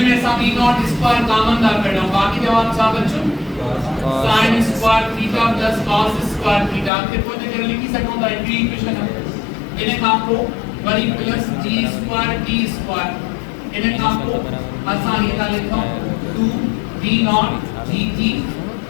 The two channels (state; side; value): drops out; right; at 6.9 s